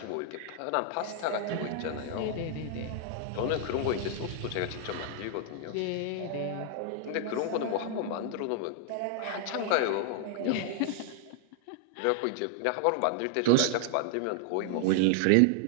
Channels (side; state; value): both; different; correlation 0.00